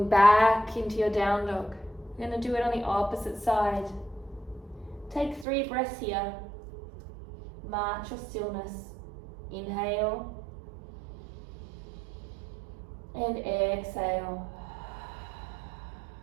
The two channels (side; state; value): left; drops out; at 5.5 s